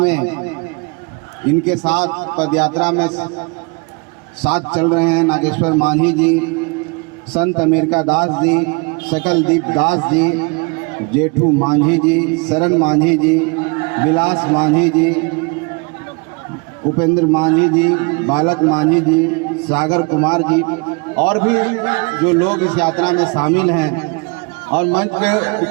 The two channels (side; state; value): left; quieter; 31.5 dB